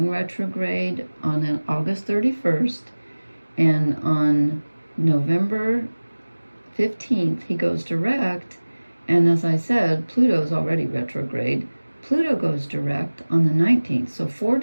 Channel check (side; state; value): both; inverted; correlation -1.00